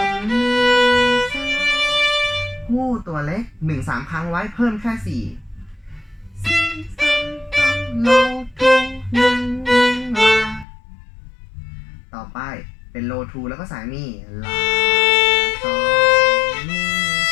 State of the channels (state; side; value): drops out; right; at 10.7 s